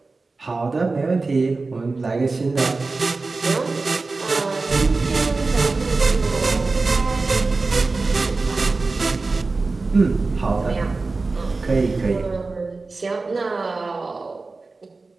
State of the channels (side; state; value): left; quieter; 3.7 dB